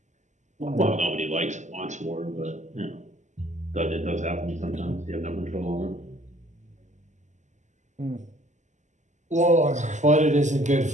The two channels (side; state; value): left; late; 0.34 ms